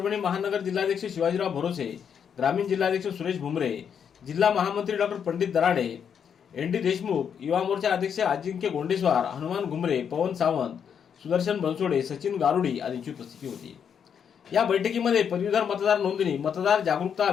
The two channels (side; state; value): right; quieter; 7.7 dB